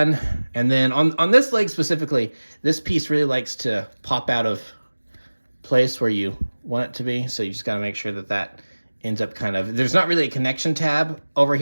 And then on this leg specifically, this piece really likes to pop out of place where you want it to be. So you just got to make sure that that ends up kind of, there's not really a connection tab over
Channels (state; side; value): inverted; both; correlation -1.00